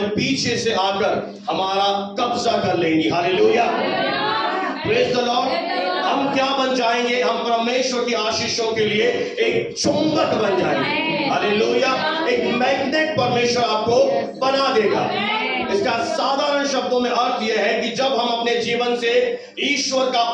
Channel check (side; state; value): both; identical; correlation 1.00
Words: पीछे से आकर हमारा कब्जा कर लेंगी। Hallelujah, praise the Lord. हम क्या बन जाएंगे? हम परमेश्वर की आशीषों के लिए एक चुंबक बन जाएंगे। हालेलुया, एक मैग्नेट परमेश्वर आपको बना देगा। इसका साधारण शब्दों में अर्थ यह है कि जब हम अपने जीवन से ईश्वर का